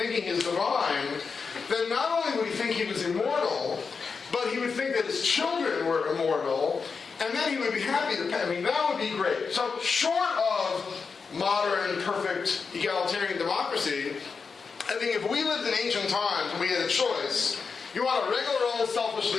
he's divine, then not only would he think he was immortal, but he would think that his children were immortal, and then he would be happy to pay. I mean, that would be great. So short of modern, perfect, egalitarian democracy, I think if we lived in ancient times and we had a choice, you want a regular old selfish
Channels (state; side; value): quieter; right; 5.2 dB